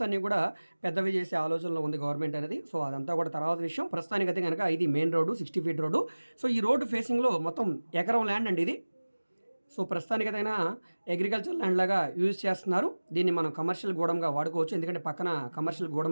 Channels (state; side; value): inverted; both; correlation -1.00